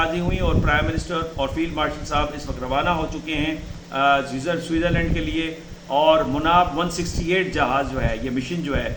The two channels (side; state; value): both; identical; correlation 1.00